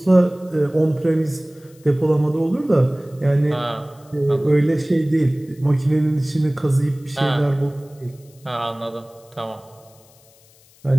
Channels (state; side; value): noise; left; hiss, 29 dB below the sound